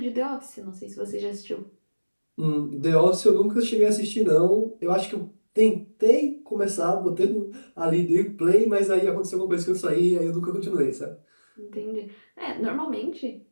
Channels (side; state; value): both; inverted; correlation -1.00